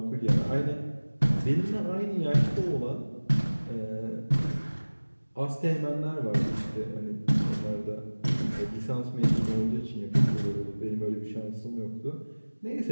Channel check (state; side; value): inverted; both; correlation -1.00